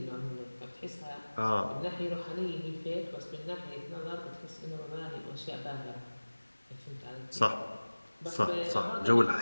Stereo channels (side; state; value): both; inverted; correlation -1.00